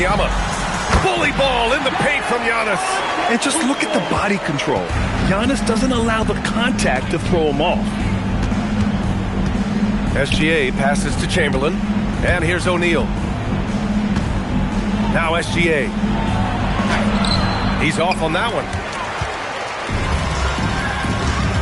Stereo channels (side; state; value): both; identical; correlation 1.00